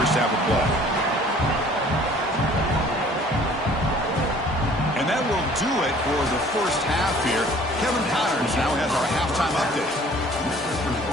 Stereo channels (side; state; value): both; normal; correlation 0.53